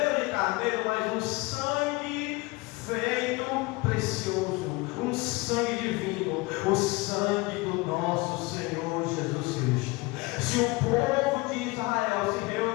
ou de carneiro, mas um sangue feito precioso, um sangue divino, o sangue do nosso Senhor Jesus Cristo. Se o povo de Israel se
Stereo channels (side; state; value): right; quieter; 23.6 dB